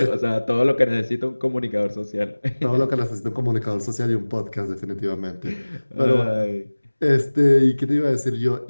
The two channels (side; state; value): both; inverted; correlation -1.00